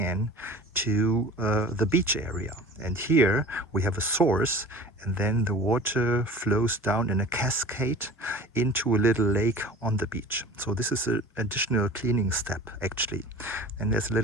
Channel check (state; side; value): normal; both; correlation 0.40